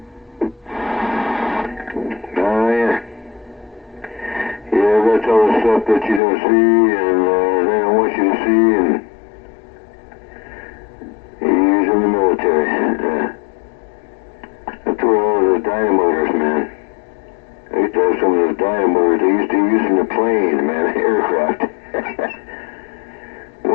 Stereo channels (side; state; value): right; drops out; at 6.2 s